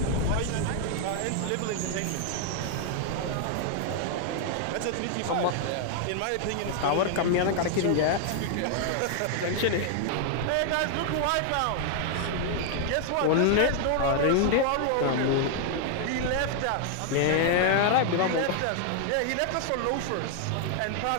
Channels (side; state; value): both; different; correlation 0.00